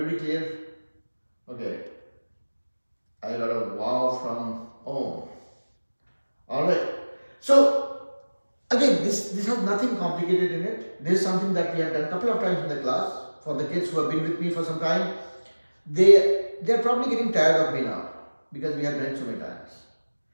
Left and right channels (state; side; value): inverted; both; correlation -1.00